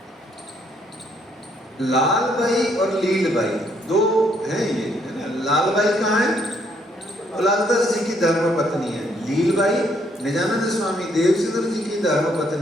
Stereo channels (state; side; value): normal; both; correlation 0.70